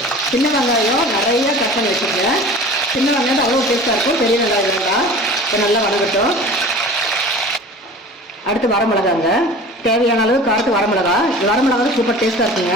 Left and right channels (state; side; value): normal; both; correlation 0.40